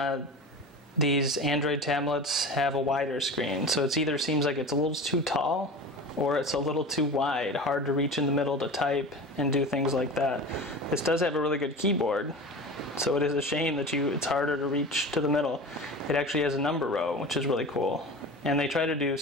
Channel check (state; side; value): normal; both; correlation 0.33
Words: these Android tablets have a wider screen, so it either seems like it's a little too tall or it's a little too wide, hard to reach in the middle to type and do things like that. This does have a really good keyboard, so it is a shame that it's harder to reach to the middle. It actually has a number row, which is really cool. And they try to do